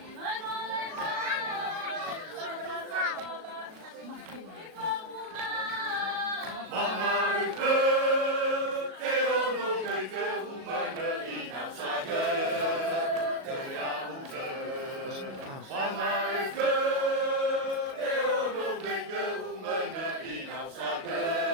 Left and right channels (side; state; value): left; late; 37 ms